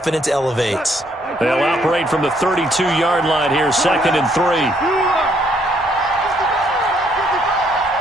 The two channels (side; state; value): both; normal; correlation 0.69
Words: elevates. They'll operate from the 32-yard line here, 2nd and 3.